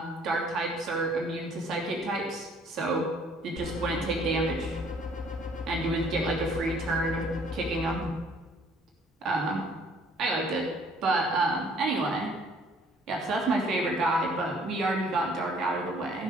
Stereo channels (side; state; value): both; normal; correlation 0.59